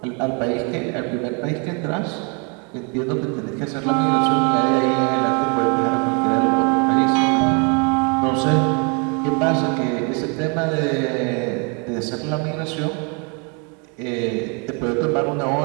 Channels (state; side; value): quieter; left; 34.9 dB